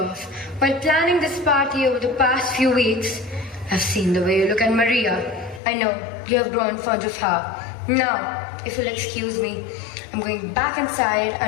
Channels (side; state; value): right; drops out; at 5.6 s